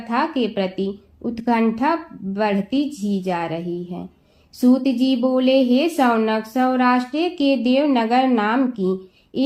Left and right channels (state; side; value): identical; both; correlation 1.00